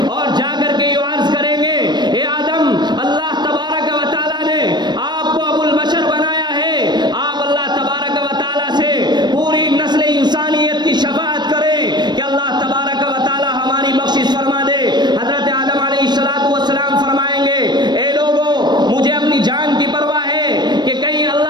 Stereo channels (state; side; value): late; left; 0.21 ms